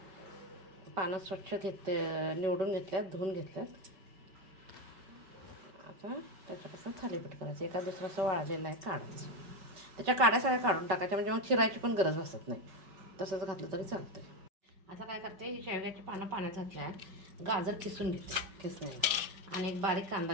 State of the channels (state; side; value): late; left; 5.3 ms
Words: पानं स्वच्छ निवडून घेतल्यात, धुवून घेतल्यात. आता त्याच्यापासून थालीपीठ करायचं. एका दुसरं असं वाळलेलं आहे, काढायचं. त्याच्या काड्या सगळ्या काढून टाकायच्या, म्हणजे मग चिरायची पण गरज भासत नाही. तसंच घातलं तरी चालतं. आता काय करते, ही शेवग्याची पानं पाण्यात घातल्या आहेत. गाजर किसून घेते किसण्याला, आणि एक बारीक कांदा